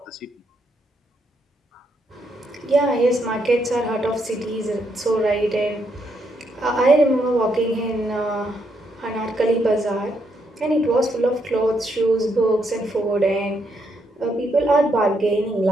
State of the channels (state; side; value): normal; both; correlation 0.76